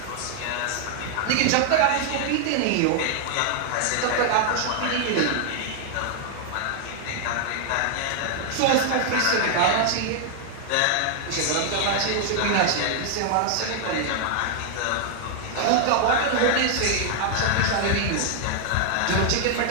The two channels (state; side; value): different; both; correlation 0.00